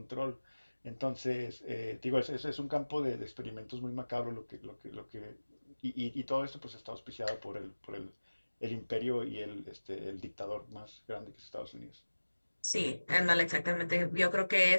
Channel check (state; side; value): inverted; both; correlation -1.00